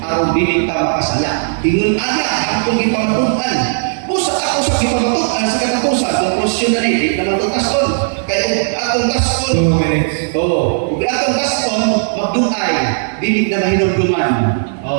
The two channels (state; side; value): silent; left; digital silence